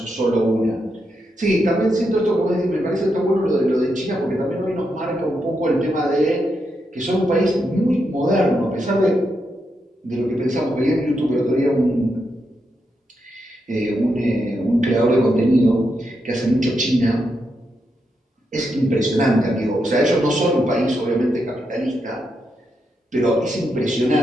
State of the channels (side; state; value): both; normal; correlation 0.83